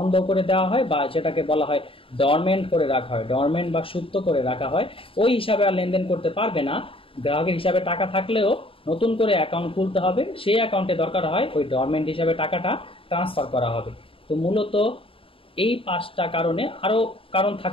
করে দেওয়া হয়, বা যেটাকে বলা হয় ডরমেন্ট করে রাখা হয়, ডরমেন্ট বা সুপ্ত করে রাখা হয়। ওই হিসাবে আর লেনদেন করতে পারবে না। গ্রাহকের হিসাবে টাকা থাকলেও নতুন করে অ্যাকাউন্ট খুলতে হবে, সেই অ্যাকাউন্টে দরকার হয় ওই ডরমেন্ট হিসাবে টাকাটা ট্রান্সফার করা হবে। তো মূলত এই 5টা কারণে, আরও কারণ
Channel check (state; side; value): late; right; 0.26 ms